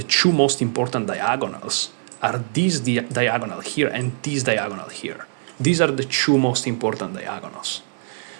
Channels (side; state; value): left; silent; 64 dB below the other